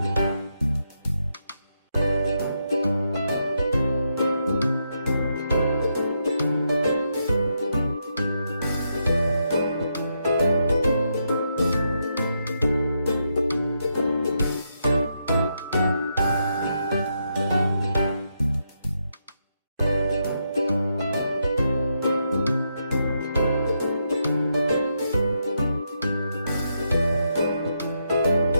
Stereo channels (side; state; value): both; inverted; correlation -0.81